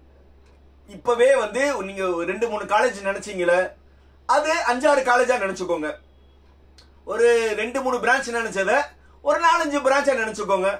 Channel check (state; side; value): identical; both; correlation 1.00